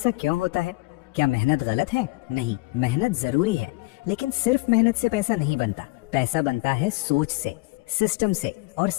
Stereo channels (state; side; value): quieter; right; 23.7 dB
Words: क्यों होता है? क्या मेहनत गलत है? नहीं, मेहनत जरूरी है, लेकिन सिर्फ मेहनत से पैसा नहीं बनता। पैसा बनता है सोच से, सिस्टम से और